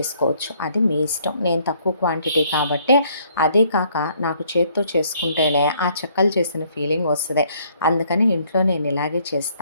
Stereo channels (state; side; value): inverted; both; correlation -0.65